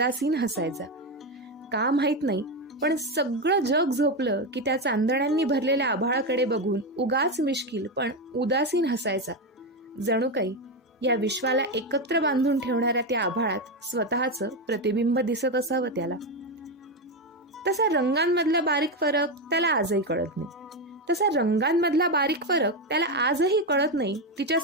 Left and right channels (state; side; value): normal; both; correlation 0.11